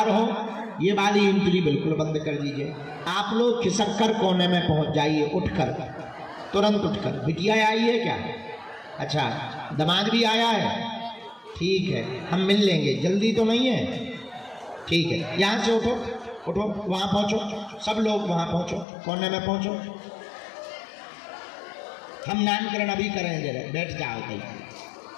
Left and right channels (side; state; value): right; drops out; at 18.9 s